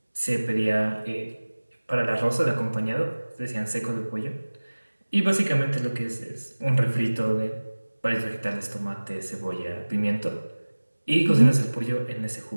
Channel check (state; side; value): inverted; both; correlation -1.00